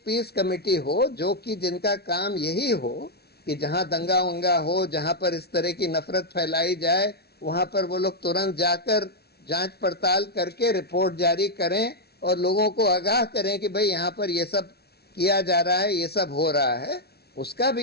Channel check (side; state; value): right; late; 0.46 ms